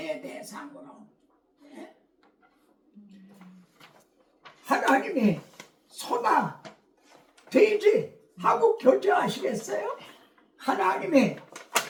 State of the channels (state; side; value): identical; both; correlation 1.00